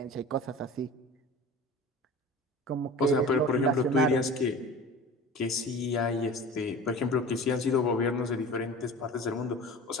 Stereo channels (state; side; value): normal; both; correlation 0.37